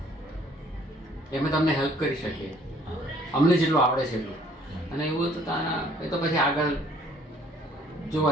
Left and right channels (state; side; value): normal; both; correlation 0.59